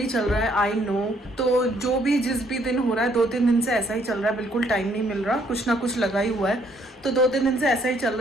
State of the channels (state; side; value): normal; both; correlation 0.67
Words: चल रहा है, आई नो। तो जो भी जिस भी दिन हो रहा है, 2-3 दिन से ऐसा ही चल रहा है, बिल्कुल टाइम नहीं मिल रहा, कुछ ना कुछ लगा ही हुआ है। तो 2-3 दिन से ऐसा ही चल